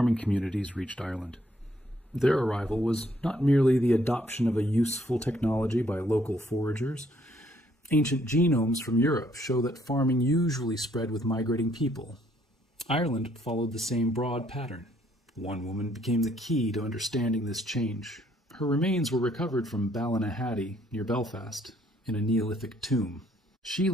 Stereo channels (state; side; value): normal; both; correlation 0.67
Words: communities reached Ireland. Their arrival was not merely the adoption of a useful technology by local foragers. Ancient genomes from Europe show that farming usually spread with migrating people. Ireland followed the same broad pattern. One woman became the key to understanding this change. Her remains were recovered from Ballynahatty, near Belfast, in a Neolithic tomb. She